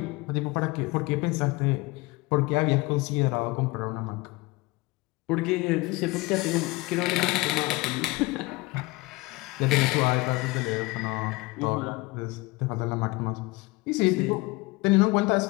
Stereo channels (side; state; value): right; quieter; 22.9 dB